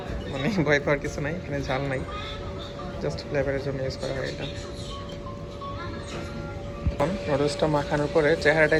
মানে ভয় পাওয়ার কিছু নাই, এখানে ঝাল নাই, জাস্ট ফ্লেভারের জন্য ইউজ করা হয় এটা। নুডলসটা মাখানোর পরে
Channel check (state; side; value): identical; both; correlation 1.00